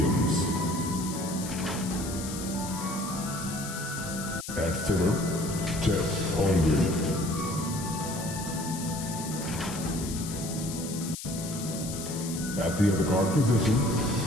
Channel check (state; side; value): noise; left; hiss, 9 dB below the sound